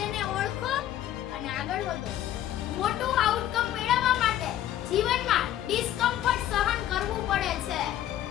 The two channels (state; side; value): quieter; right; 12.2 dB